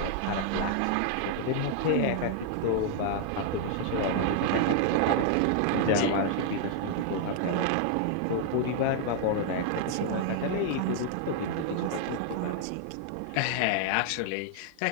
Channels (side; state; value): both; different; correlation 0.00